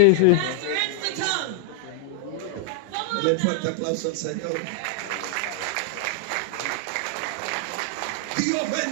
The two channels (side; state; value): both; different; correlation -0.01